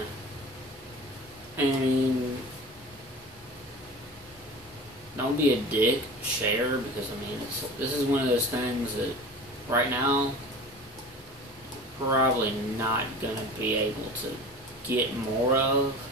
And don't be a dick, share, because, I mean, this is one of those things that right now, probably not going to be able to get more of.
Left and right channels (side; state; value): both; normal; correlation 0.37